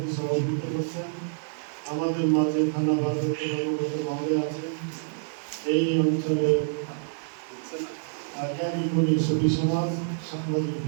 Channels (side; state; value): left; silent; digital silence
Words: করছেন। আমাদের মাঝে থানা ভারতের কর্মকর্তা মহোদয় আছেন। এই অঞ্চলের জ্ঞানী গুণী সুফি সমাজ সাংবাদিক